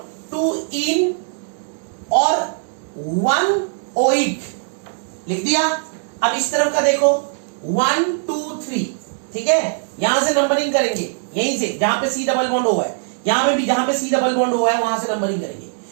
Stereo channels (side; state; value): left; silent; digital silence